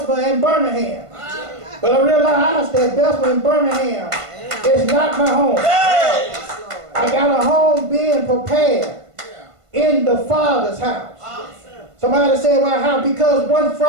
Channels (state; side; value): late; left; 1.5 ms